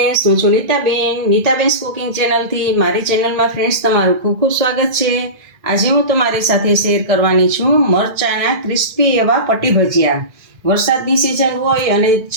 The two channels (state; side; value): late; left; 2.1 ms